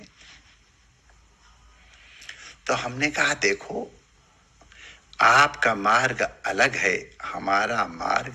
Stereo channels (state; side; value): identical; both; correlation 1.00